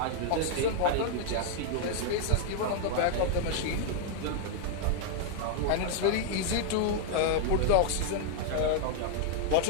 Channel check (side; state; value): both; different; correlation 0.00